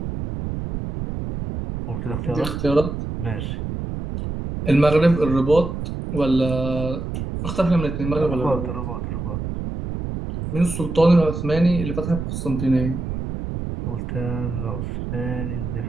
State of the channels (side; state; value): right; noise; rumble, 5 dB below the sound